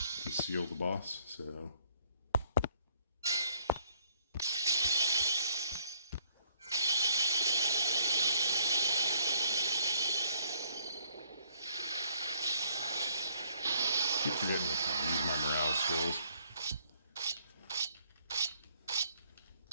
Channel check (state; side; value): inverted; both; correlation -0.65